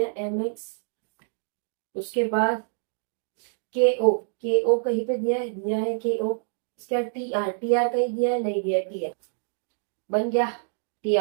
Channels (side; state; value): left; silent; digital silence